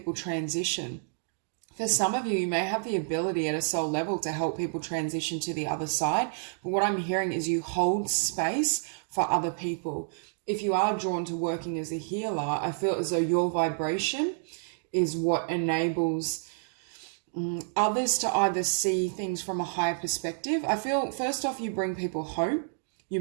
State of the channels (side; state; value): left; silent; digital silence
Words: transition. For some of you, you may have the ability at a soul level to help people transition to the other side. But what I'm hearing is you hold space for other people. If you are drawn to working as a healer, I feel as though your vibration is what enables others to either see things from a higher perspective. I feel, first off, you bring people hope. You